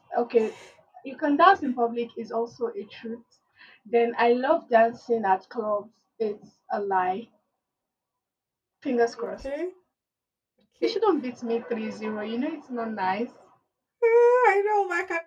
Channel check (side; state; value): both; identical; correlation 1.00